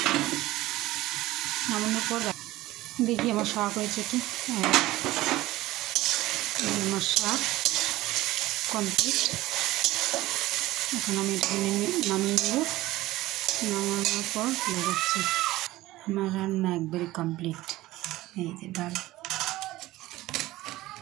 নামানোর পর দেখি আমার শাক হয়েছে কি। আমার শাক কমপ্লিট। এখন আমি এটা নামিয়ে নেব। নামানোর পর দেখাচ্ছি। আমার রান্না একবারে কমপ্লিট। এই যে ডাল,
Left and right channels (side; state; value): left; quieter; 17.3 dB